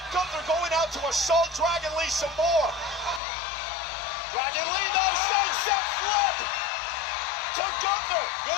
Gunther going out to assault Dragon Lee some more. Dragon Lee, no, sunset flip to Gunther.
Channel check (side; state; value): right; drops out; at 3.2 s